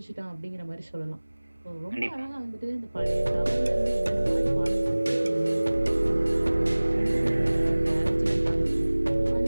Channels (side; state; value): both; inverted; correlation -1.00